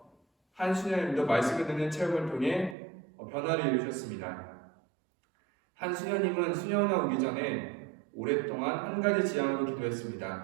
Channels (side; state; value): left; drops out; at 2.8 s